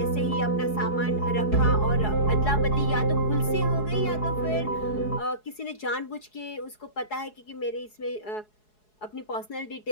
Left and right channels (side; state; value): right; late; 4.7 ms